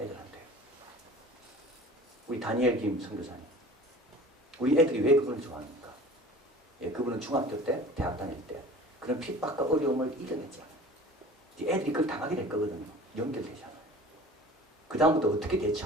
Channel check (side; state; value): both; normal; correlation 0.43